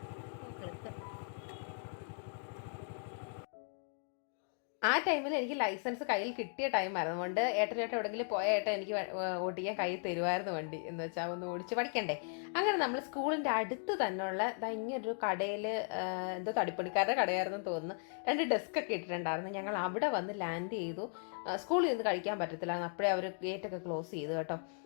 ആ ടൈമിൽ എനിക്ക് ലൈസൻസ് കയ്യിൽ കിട്ടിയ ടൈമായിരുന്നു. അതുകൊണ്ട് ഏട്ടനായിട്ട് എവിടെയെങ്കിലും പോയ ഏട്ടൻ എനിക്ക് ഓടിക്കാൻ കയ്യിൽ തരുമായിരുന്നു വണ്ടി, എന്ന് വെച്ചാൽ ഒന്ന് ഓടിച്ച് പഠിക്കണ്ടേ. അങ്ങനെ നമ്മൾ സ്കൂളിൻ്റെ അടുത്ത് തന്നെയുള്ള ഇങ്ങനൊരു കടയിൽ, എന്തോ തടിപ്പണിക്കാരുടെ കടയായിരുന്നു തോന്നുന്നു, 2 ഡെസ്ക് ഒക്കെ ഇട്ടിട്ടുണ്ടായിരുന്നു. ഞങ്ങൾ അവിടെ വന്ന് ലാൻഡ് ചെയ്തു. സ്കൂളിൽ നിന്ന് കഴിക്കാൻ പറ്റത്തില്ലായിരുന്നു, അപ്പോഴേ അവർ ഗേറ്റൊക്കെ ക്ലോസ് ചെയ്തു കേട്ടോ.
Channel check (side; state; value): right; silent; 53 dB below the other